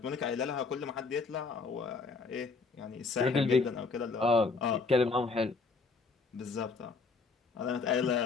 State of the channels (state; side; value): quieter; right; 4.3 dB